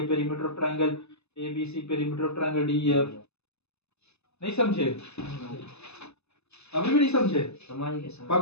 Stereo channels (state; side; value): late; right; 0.80 ms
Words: perimeter of triangle ABC perimeter of triangle DEF। नहीं समझे? अभी भी नहीं समझे?